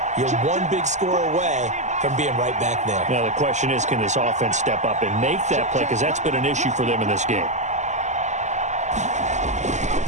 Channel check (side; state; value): left; late; 0.34 ms